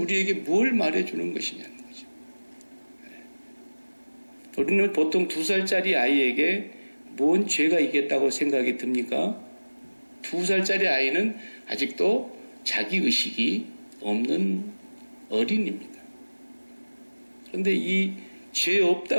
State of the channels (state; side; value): inverted; both; correlation -1.00